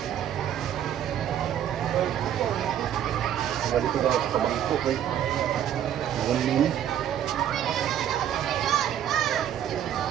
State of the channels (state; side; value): quieter; left; 10.4 dB